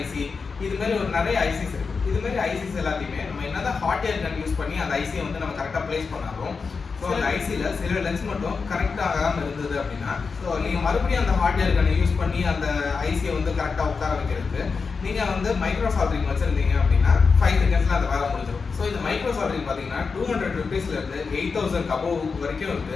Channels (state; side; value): quieter; right; 5.0 dB